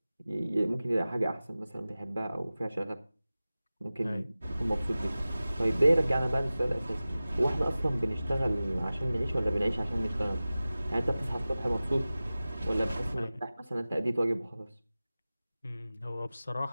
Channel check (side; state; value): both; inverted; correlation -0.97